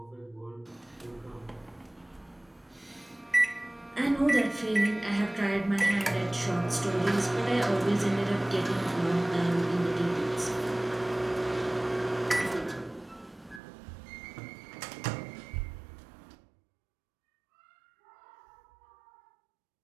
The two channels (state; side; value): drops out; left; at 13.6 s